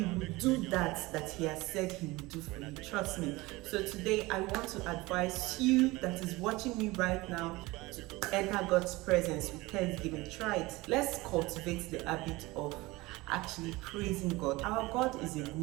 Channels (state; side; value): quieter; left; 21.3 dB